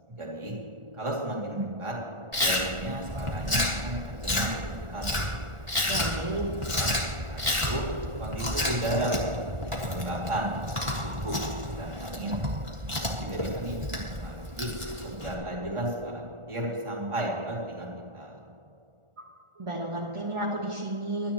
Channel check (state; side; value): late; left; 1.4 ms